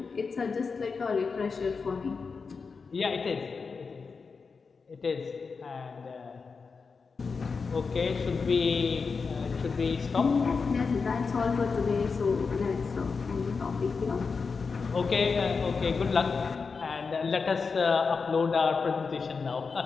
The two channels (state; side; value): quieter; right; 4.9 dB